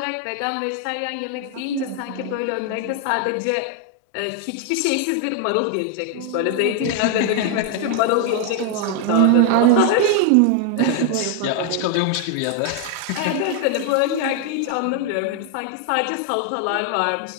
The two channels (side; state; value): both; different; correlation 0.00